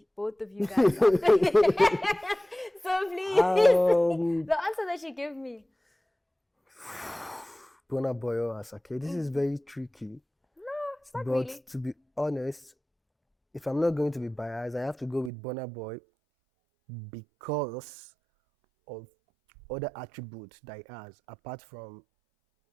both of you guys. So please, the answer that you give me. Burna Boy or Asake. This is very tricky. No, it's not but really. To be honest, if I'm not going to be biased, I have to go with Burna Boy because of other attributes that he has, apart from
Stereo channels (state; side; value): drops out; left; at 15.3 s